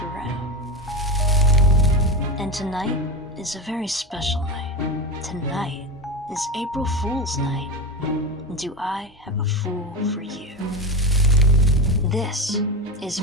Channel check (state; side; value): normal; both; correlation 0.22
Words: around. And tonight is a very special night. Tonight is April Fool's Night. Do I have a fool for you? This is